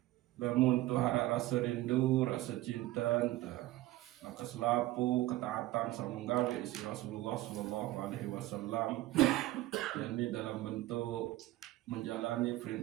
Lamun tu harap rasa rindu, rasa cinta, maka selapu ketaatan samunggawe isi Rasulullah Sallallahu Alaihi Wasallam, yakni dalam bentuk menjalani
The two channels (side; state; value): left; quieter; 16.8 dB